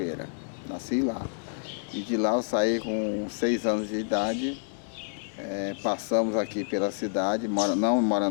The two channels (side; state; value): right; silent; digital silence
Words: Nasci lá. E de lá eu saí com 6 anos de idade, passamos aqui pela cidade, não